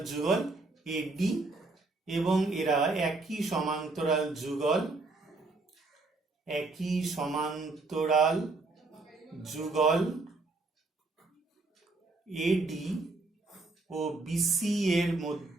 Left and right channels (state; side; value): quieter; left; 3.4 dB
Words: যুগল AD এবং এরা একই সমান্তরাল যুগল, একই সমান্তরাল যুগল AD ও BC এর